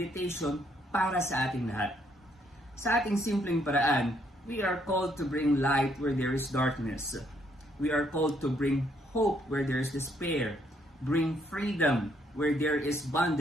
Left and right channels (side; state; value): both; normal; correlation 0.70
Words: para sa ating lahat. Sa ating simpleng paraan, we are called to bring light where there is darkness. We are called to bring hope where there is despair, bring freedom where there is